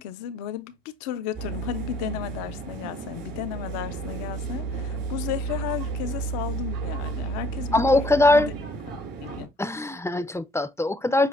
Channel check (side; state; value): both; normal; correlation 0.58